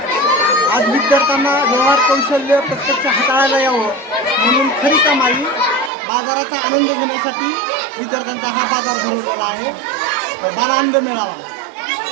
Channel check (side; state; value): left; drops out; at 5.9 s